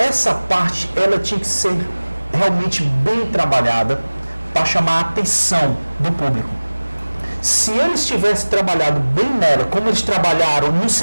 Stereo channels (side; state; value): both; inverted; correlation -1.00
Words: parte, ela tinha que ser realmente bem trabalhada para chamar a atenção do público. Se eles tivessem trabalhado bem nela, como eles trabalharam no